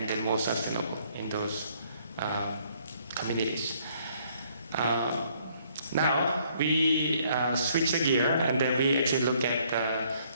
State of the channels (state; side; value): inverted; both; correlation -0.65